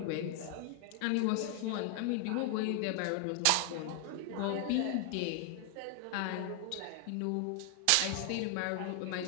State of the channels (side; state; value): both; different; correlation 0.00